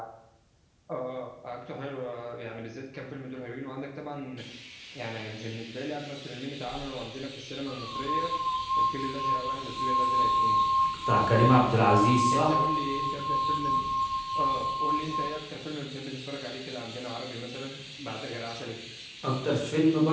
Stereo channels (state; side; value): identical; both; correlation 1.00